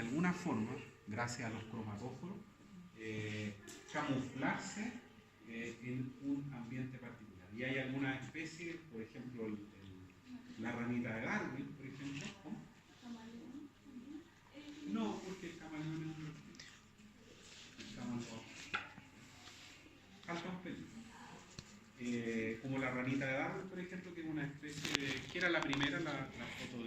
forma, gracias a los cromatóforos, camuflarse en un ambiente particular. Y hay algunas especies, por ejemplo, la ranita de Darwin, por ejemplo. ¿Cómo? No, porque el camaleón es un reptil. El camaleón falta un pelito. Como la ranita de Darwin, por ejemplo, que es una especie de... ¿Qué era la primera? La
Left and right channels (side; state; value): both; identical; correlation 1.00